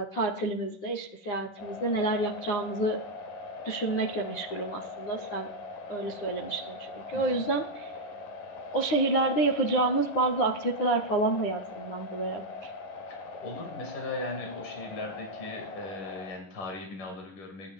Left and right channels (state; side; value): late; right; 9.8 ms